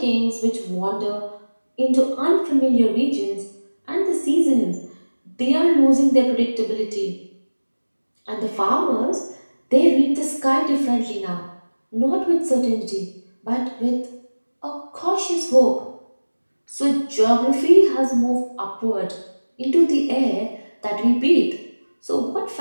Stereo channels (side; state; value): both; inverted; correlation -1.00